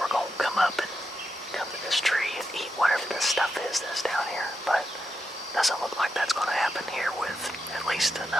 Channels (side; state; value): both; normal; correlation 0.86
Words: come up and come to this tree and eat whatever this stuff is that's down here, but doesn't look like that's gonna happen here with at least